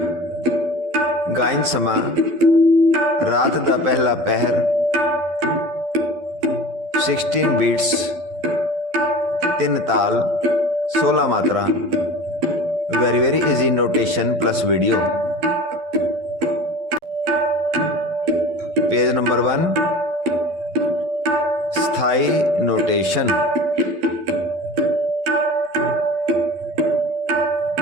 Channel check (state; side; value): late; left; 12 ms